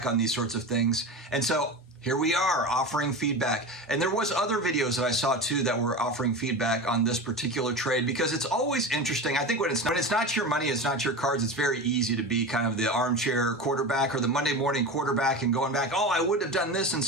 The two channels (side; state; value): both; normal; correlation 0.27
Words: on these sorts of things. And so here we are offering feedback. And there was other videos that I saw too that were offering feedback on this particular trade, because it's always interesting. I think when it's not your money, it's not your cards, it's very easy to be kind of the armchair quarterback or the Monday morning quarterback and going back, oh, I would have done this